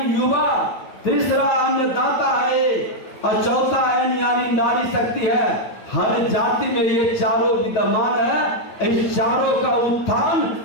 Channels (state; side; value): late; right; 9.4 ms